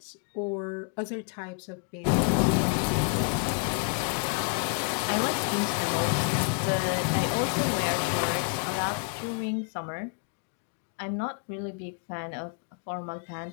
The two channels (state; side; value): quieter; right; 37.3 dB